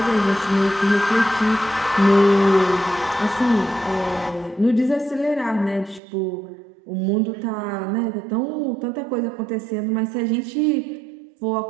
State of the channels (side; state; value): left; drops out; at 6.0 s